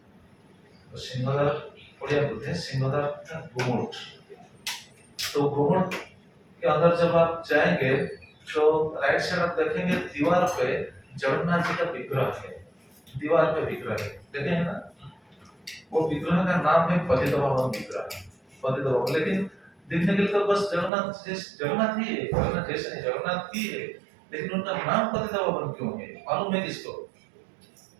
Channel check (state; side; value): drops out; left; at 20.9 s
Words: तो सिंहद्वार उड़िया बोलते हैं, सिंहद्वार का गुमुट। तो गुमुट के अंदर जब आप जाएंगे तो राइट साइड आप देखेंगे दीवार पे जगन्नाथ जी का विग्रह है, दीवार पे विग्रह है, देखे हैं ना। वो विग्रह का नाम है पतित पावन विग्रह, पतित पावन। लेकिन दिखने के लिए तो बस जगन्नाथ ही है, जगन्नाथ जैसे नहीं, जगन्नाथ ही है, लेकिन उनका नाम पतित पावन क्यों है? मालूम है किसको?